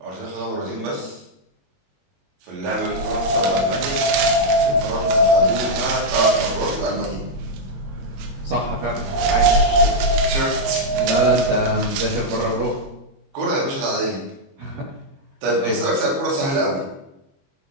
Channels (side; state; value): left; late; 22 ms